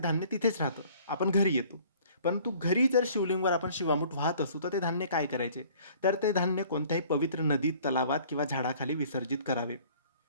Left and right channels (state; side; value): inverted; both; correlation -0.53